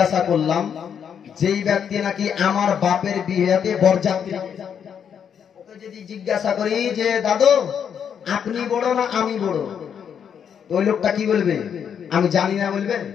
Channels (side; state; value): right; quieter; 7.9 dB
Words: করলাম, যেই ব্যক্তি নাকি আমার বাপের বিয়েতে বরযাত্রী, ওকে যদি জিজ্ঞাসা করি যে দাদু আপনি বড় না আমি বড়, তো ওই লোকটা কি বলবে? আমি জানি না বলবে